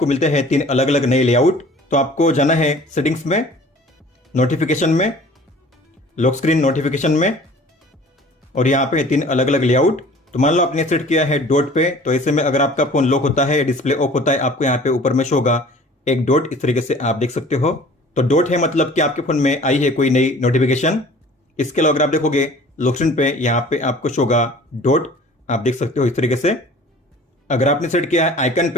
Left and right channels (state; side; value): normal; both; correlation 0.47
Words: मिलते हैं 3 अलग अलग नए लेआउट। तो आपको जाना है सेटिंग्स में, नोटिफिकेशन में, लॉक स्क्रीन नोटिफिकेशन में और यहाँ पे 3 अलग अलग लेआउट। तो मान लो आपने सेट किया है डॉट पे, तो ऐसे में अगर आपका फोन लॉक होता है, डिस्प्ले ऑफ होता है, आपको यहाँ पे ऊपर में शो होगा एक डॉट, इस तरीके से आप देख सकते हो। तो डॉट है मतलब कि आपके फोन में आई है कोई नई नोटिफिकेशन। इसके अलावा अगर आप देखोगे लॉक स्क्रीन पे यहाँ पे आपको शो होगा डॉट, आप देख सकते हो इस तरीके से। अगर आपने सेट किया है आइकन